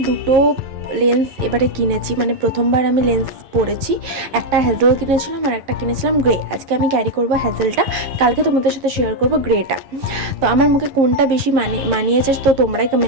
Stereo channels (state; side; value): late; left; 11 ms